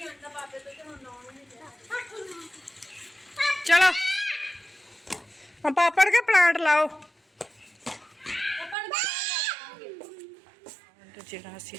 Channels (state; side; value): drops out; left; at 8.8 s